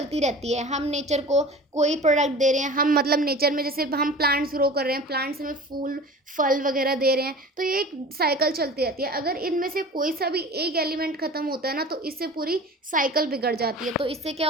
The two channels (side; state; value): both; normal; correlation 0.38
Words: रहती है। हम नेचर को कोई प्रोडक्ट दे रहे हैं, हम मतलब नेचर में जैसे हम प्लांट्स ग्रो कर रहे हैं, प्लांट्स में फूल फल वगैरह दे रहे हैं, तो ये एक साइकिल चलती रहती है। अगर इनमें से कोई सा भी एक एलिमेंट ख़त्म होता है ना, तो इससे पूरी साइकिल बिगड़ जाती है। तो इससे क्या